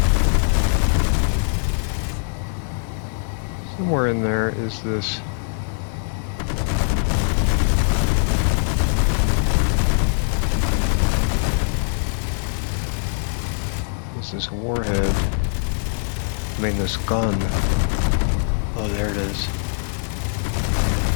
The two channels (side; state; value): right; silent; 64 dB below the other